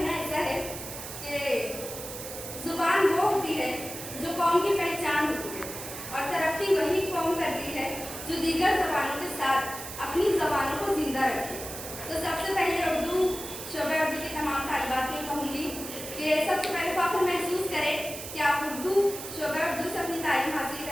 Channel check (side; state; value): right; noise; hiss, 9 dB below the sound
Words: ایسا ہے کہ زبان وہ ہوتی ہے جو قوم کی پہچان ہوتی ہے, اور ترقی وہی قوم کرتی ہے جو دیگر زبانوں کے ساتھ اپنی زبانوں کو زندہ رکھے. تو سب سے پہلے اردو شعبہ اردو کے تمام طالبات کو کہوں گی کہ سب سے پہلے فخر محسوس کریں کہ آپ اردو شعبہ اردو سے اپنی تعلیم حاصل